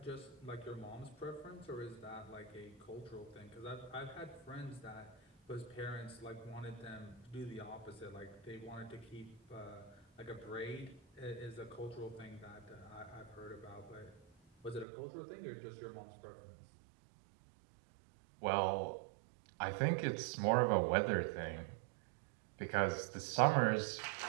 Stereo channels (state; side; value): drops out; left; at 14.9 s